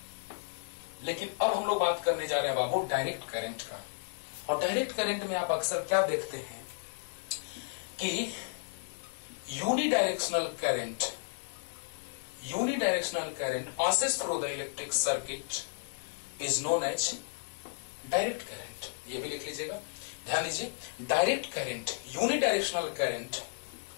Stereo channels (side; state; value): right; silent; 56 dB below the other